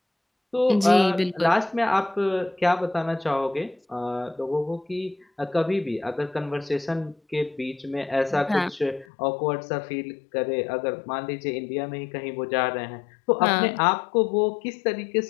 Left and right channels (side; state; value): right; drops out; at 9.1 s